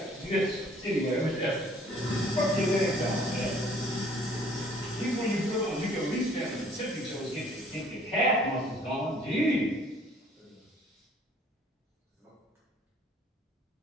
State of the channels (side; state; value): both; normal; correlation 0.57